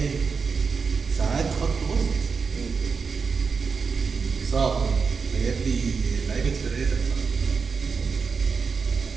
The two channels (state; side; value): quieter; left; 5.3 dB